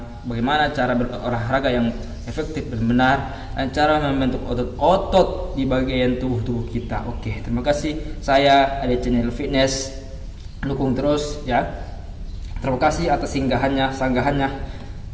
bagaimana cara berolahraga yang efektif dan benar dan cara membentuk otot-otot di bagian tubuh kita. Oke, terima kasih. Saya ada channel fitness, dukung terus ya. Terima kasih atas sanggahannya.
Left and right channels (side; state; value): both; identical; correlation 1.00